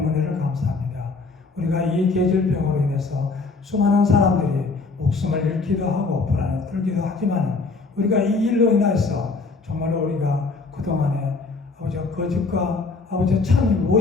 은혜를 감사합니다. 우리가 이 계절병으로 인해서 수많은 사람들이 목숨을 잃기도 하고 불안에 떨기도 하지만 우리가 이 일로 인해서 정말로 우리가 그동안에 아버지 거짓과 아버지 참이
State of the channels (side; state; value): right; quieter; 4.0 dB